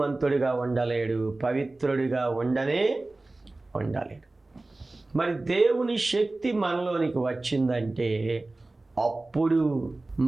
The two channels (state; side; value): quieter; left; 3.0 dB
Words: ఉండలేడు, పవిత్రుడిగా ఉండలేడు. మరి దేవుని శక్తి మనలోనికి వచ్చిందంటే అప్పుడు